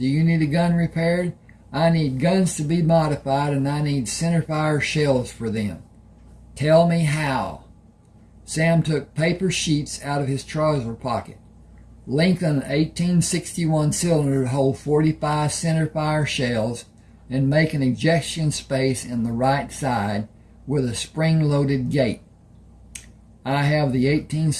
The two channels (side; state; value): both; identical; correlation 1.00